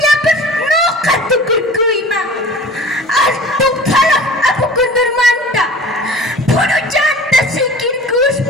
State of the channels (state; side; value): normal; both; correlation 0.42